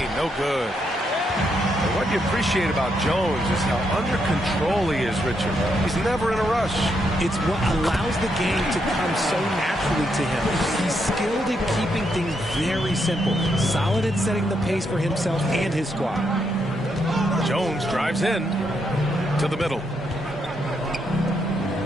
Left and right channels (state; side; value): normal; both; correlation 0.79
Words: no good. And what you appreciate about Jones is how under control he is, Richard. He's never in a rush. It's what allows the game to come so naturally to him. He's skilled at keeping things very simple. Solid at setting the pace for himself and his squad. Jones drives in to the middle.